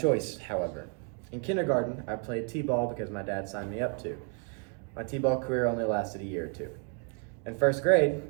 however. In kindergarten, I played t-ball because my dad signed me up to. My t-ball career only lasted a year or two. In first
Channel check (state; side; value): quieter; left; 37.0 dB